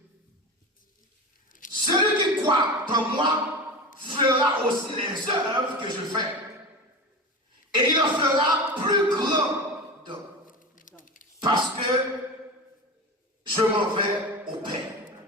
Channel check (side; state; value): both; normal; correlation 0.27